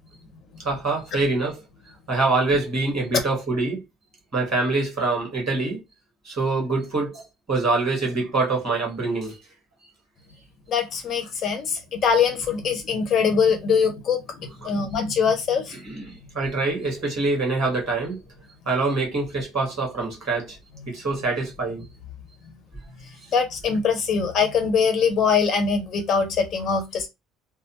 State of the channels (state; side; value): normal; both; correlation 0.54